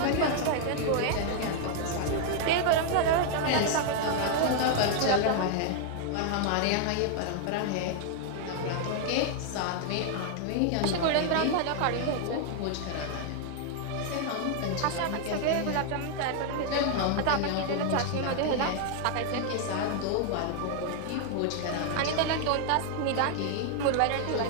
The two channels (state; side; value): different; both; correlation 0.00